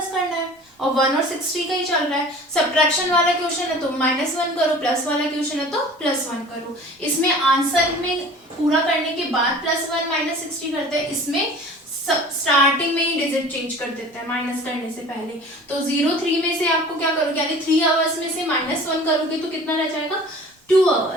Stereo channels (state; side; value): normal; both; correlation 0.44